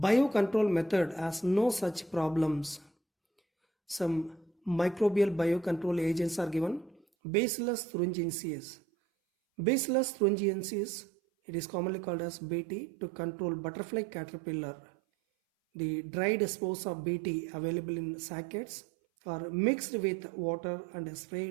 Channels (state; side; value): drops out; left; at 7.1 s